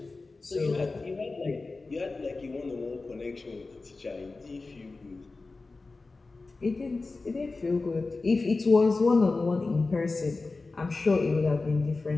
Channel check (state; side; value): quieter; right; 3.7 dB